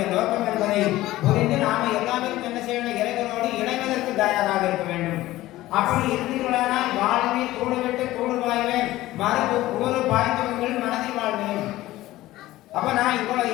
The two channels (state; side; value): quieter; right; 16.4 dB